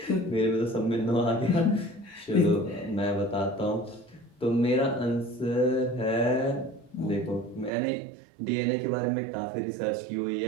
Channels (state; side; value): drops out; left; at 7.7 s